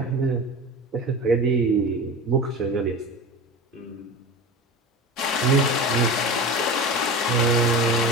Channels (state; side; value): normal; both; correlation 0.29